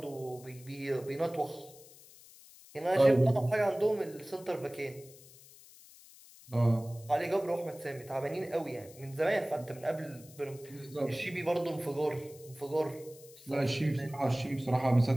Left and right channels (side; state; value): left; noise; hiss, 21 dB below the sound